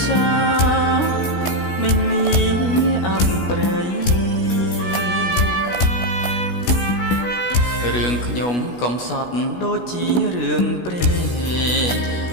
សាមិនមានអប្រ័យរឿងខ្ញុំកំសត់ដូចជារឿងព្រេង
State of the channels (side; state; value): right; late; 17 ms